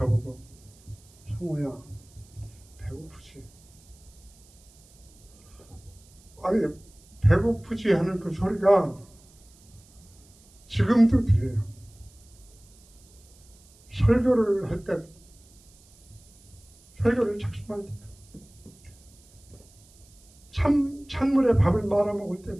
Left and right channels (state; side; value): noise; right; hiss, 27 dB below the sound